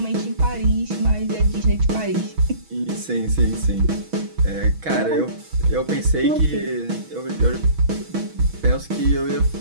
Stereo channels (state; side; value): late; left; 6.2 ms